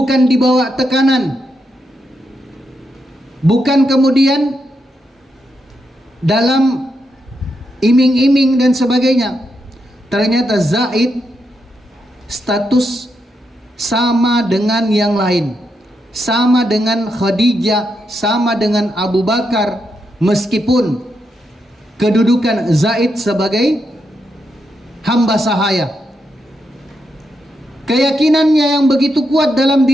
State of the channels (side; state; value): both; normal; correlation 0.82